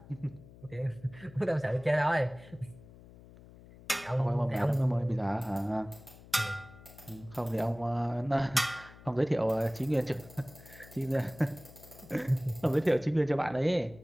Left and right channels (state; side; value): noise; left; hum, 20 dB below the sound